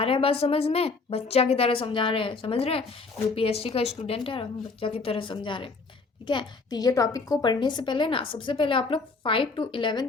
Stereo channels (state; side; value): quieter; right; 4.1 dB